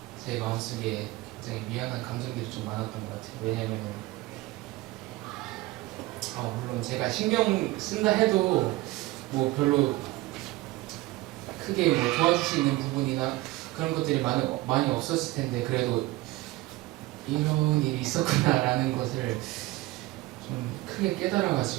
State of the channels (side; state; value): left; quieter; 18.8 dB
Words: 제 마음속에 굉장히 미안한 감정들이 좀 많았던 것 같아요. 왜냐면 물론 제가 신경 쓴다 해도 뭐 별로 크게 뭐 도와줄 수 있는 부분이나 그런 것들이 많이 없었을 텐데 그래도 이런 일이 있었구나라는 것을 좀 크게